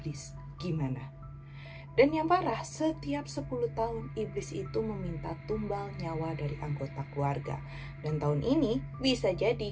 gimana? Dan yang parah, setiap 10 tahun iblis itu meminta tumbal nyawa dari anggota keluarga. Dan tahun ini bisa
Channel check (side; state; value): both; identical; correlation 1.00